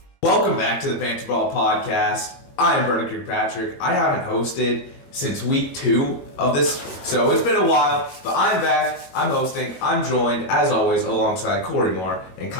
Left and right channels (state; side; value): late; right; 22 ms